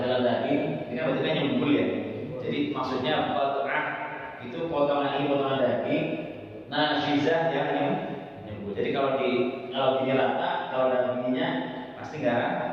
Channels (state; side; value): identical; both; correlation 1.00